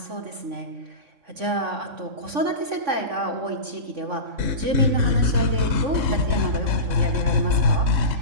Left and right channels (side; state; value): left; late; 3.5 ms